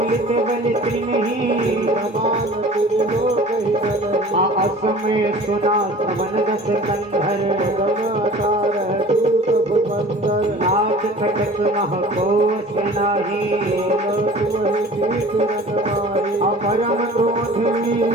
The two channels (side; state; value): both; normal; correlation 0.44